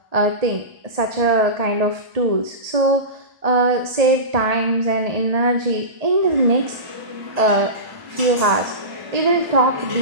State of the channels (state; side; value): late; left; 1.7 ms